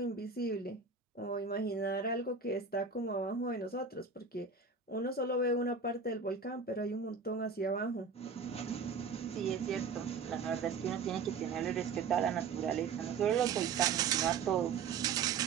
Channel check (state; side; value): quieter; left; 5.3 dB